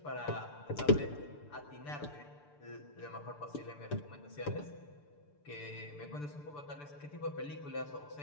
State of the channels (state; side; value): late; right; 6.8 ms